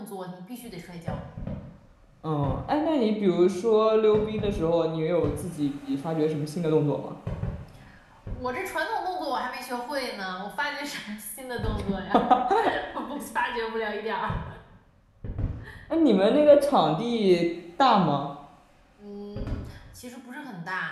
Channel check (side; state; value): both; identical; correlation 1.00